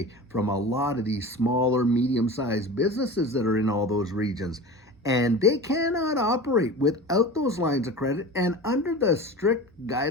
from a lot of these smaller, medium-sized businesses that are in all those regions. And they cannot operate without those lines of credit. And under the strict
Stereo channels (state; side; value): normal; both; correlation 0.33